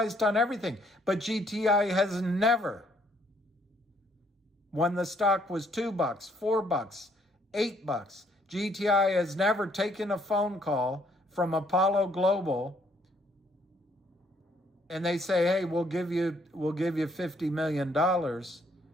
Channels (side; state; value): both; normal; correlation 0.67